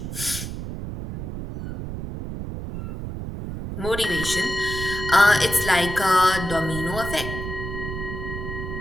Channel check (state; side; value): noise; right; rumble, 7 dB below the sound